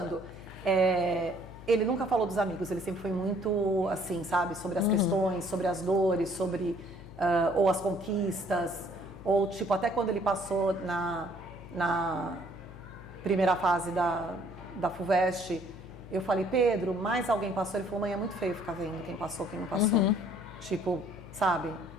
ele nunca falou dos amigos, ele sempre foi muito assim, sabe, sobre as questões, sobre as dores, sobre ou as conquistas, ou tipo, até quando ele passou na primeira fase da FUVEST, eu falei, Pedro, mais alguém passou? Ele falou, mãe, é muito feio ficar vendo quem passou, quem não passou. Tipo, sabe?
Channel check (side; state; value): left; noise; hum, 16 dB below the sound